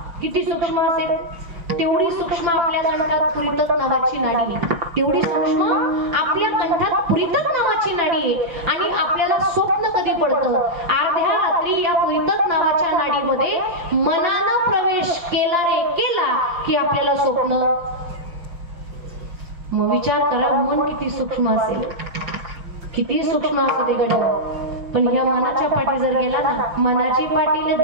किती सूक्ष्म असेल. तेवढी सूक्ष्म आपल्या कंठात पुरितक नावाची नाडी आहे. तेवढी सूक्ष्म आपल्या कंठात पुरितक नावाची नाडी आहे. आणि आपल्याला स्वप्न कधी पडतं? अर्ध्या रात्री या पुरितक नावाच्या नाडीमध्ये मनानं प्रवेश केला की आपल्याला स्वप्न. मग विचार करा, मन किती सूक्ष्म असेल, किती सूक्ष्म असू दे गड्या. पण ह्या मनाच्या पाठी जर गेला ना, मनाची पाटील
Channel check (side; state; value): left; late; 5.8 ms